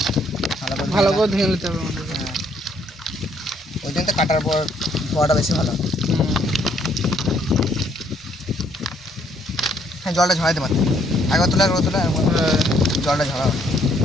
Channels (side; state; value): both; normal; correlation 0.67